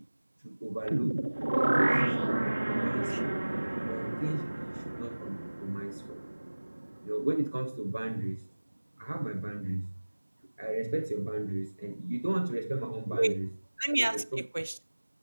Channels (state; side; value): inverted; both; correlation -1.00